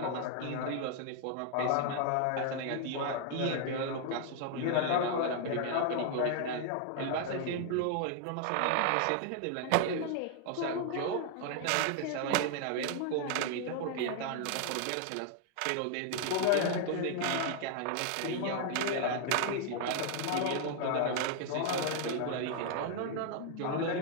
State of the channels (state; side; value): different; both; correlation 0.00